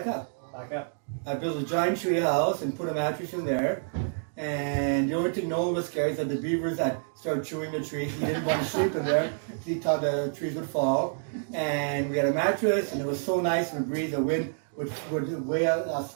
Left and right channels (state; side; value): silent; left; digital silence